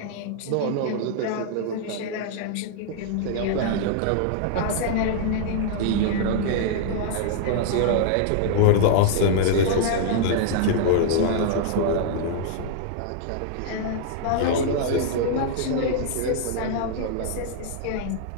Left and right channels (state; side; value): different; both; correlation -0.01